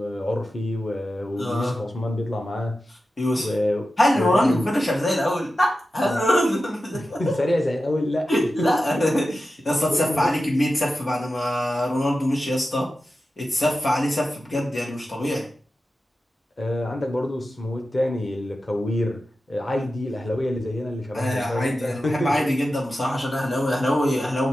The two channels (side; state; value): both; normal; correlation 0.93